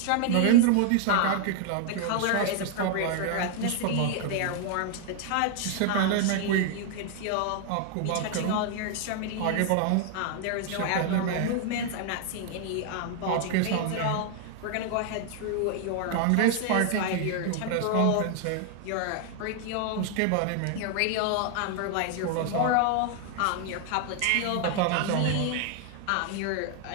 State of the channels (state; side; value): different; both; correlation 0.00